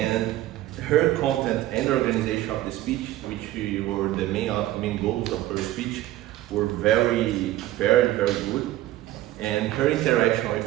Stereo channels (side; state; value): left; quieter; 15.2 dB